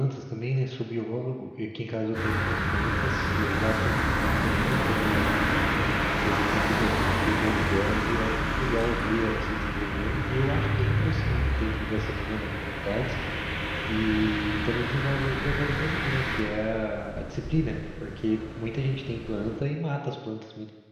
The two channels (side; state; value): both; identical; correlation 1.00